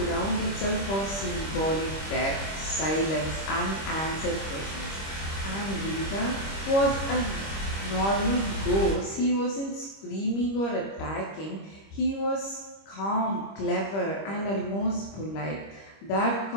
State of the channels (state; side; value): late; right; 25 ms